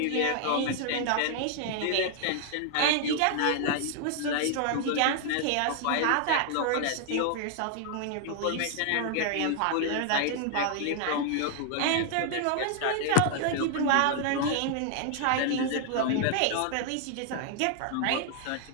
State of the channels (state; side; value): different; both; correlation 0.00